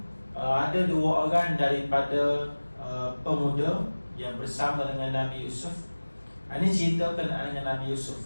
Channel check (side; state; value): both; inverted; correlation -1.00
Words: ada 2 orang daripada pemuda yang bersama dengan Nabi Yusuf. Ini cerita berkenaan dengan Nabi